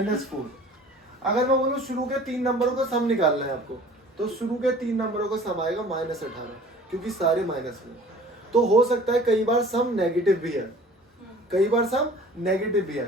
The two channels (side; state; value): both; normal; correlation 0.47